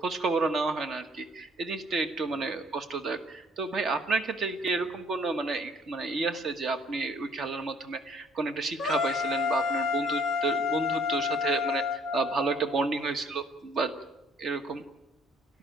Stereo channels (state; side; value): normal; both; correlation 0.60